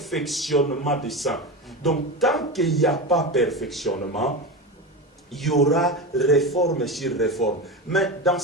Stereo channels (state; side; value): normal; both; correlation 0.21